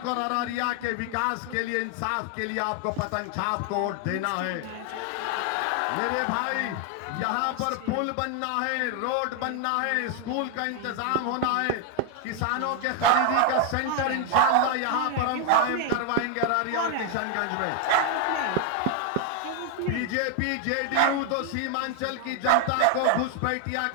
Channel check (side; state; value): both; different; correlation 0.00